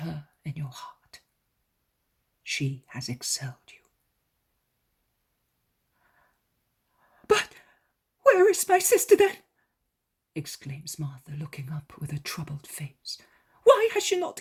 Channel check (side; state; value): both; identical; correlation 1.00